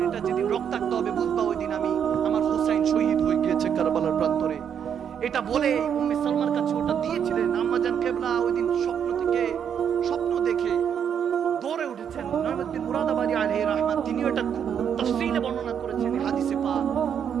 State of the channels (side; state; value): left; quieter; 8.2 dB